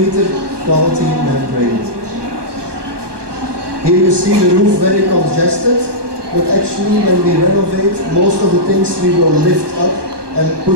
quality membrane. Here you see the roof very congested, but actually when we renovate, most of the things we will lift up and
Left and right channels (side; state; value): left; late; 1.2 ms